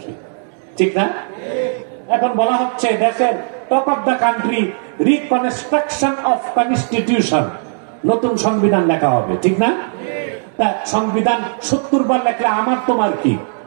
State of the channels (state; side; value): silent; left; digital silence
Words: ঠিক না? এখন বলা হচ্ছে দেশের talk of the country reconstruction of constitution, নতুন সংবিধান লেখা হবে, ঠিক না? তা সংবিধান 70 বার লেখলে আমার তোমার কি?